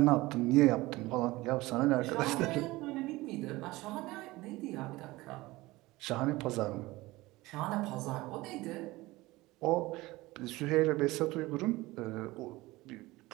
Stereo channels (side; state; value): left; quieter; 19.9 dB